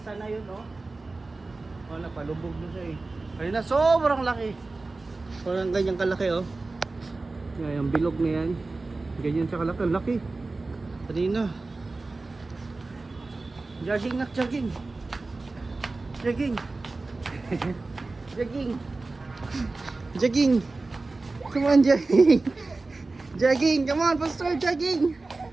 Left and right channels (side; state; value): left; quieter; 3.5 dB